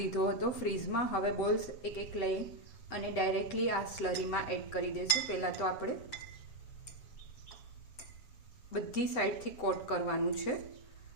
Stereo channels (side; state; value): right; late; 7.9 ms